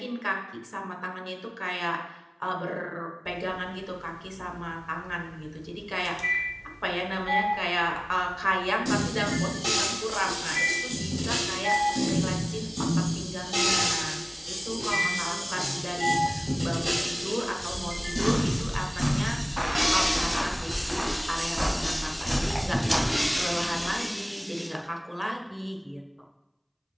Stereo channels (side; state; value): both; identical; correlation 1.00